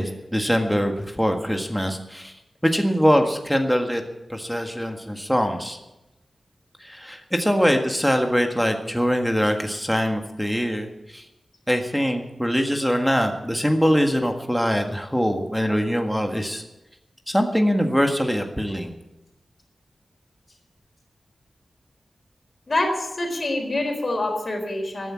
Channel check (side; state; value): both; normal; correlation 0.98